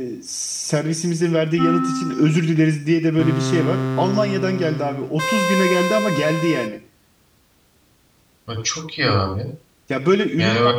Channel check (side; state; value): both; identical; correlation 1.00